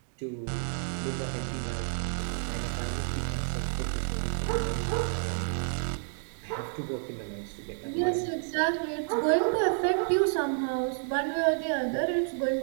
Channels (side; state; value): left; silent; 58 dB below the other